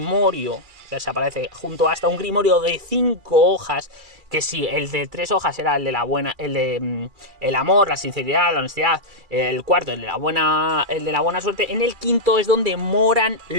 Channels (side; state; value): left; late; 2.3 ms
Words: que se aparece junto hasta un grimorio de 5 hojas, que si el de 3 hojas era el de la buena, el amor, la sinceridad, la honestidad, el cuarto, el de la buena suerte, en el quinto es donde moran